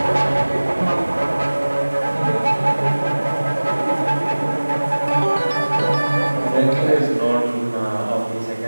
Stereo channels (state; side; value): inverted; both; correlation -1.00